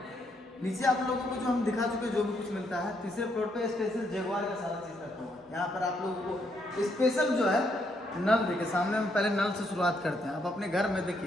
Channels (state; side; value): normal; both; correlation 0.75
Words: नीचे आप लोगों को जो हम दिखा चुके जो भी कुछ मिलता है, तीसरे फ्लोर पे स्पेशल जगुआर का सारा चीज रखा हुआ है। यहाँ पर आप लोगों को स्पेशल जो है नल देखिए, सामने हम पहले नल से शुरुआत करते हैं। आप अपने घर में